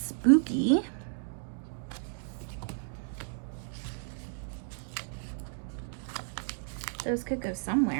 Those could go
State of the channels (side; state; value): left; silent; digital silence